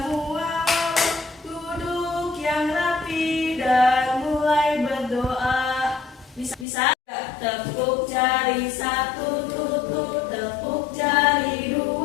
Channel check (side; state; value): right; drops out; at 6.7 s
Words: wawa, duduk yang rapi dan mulai berdoa. Bisa? Tepuk jari satu tutut, tepuk jari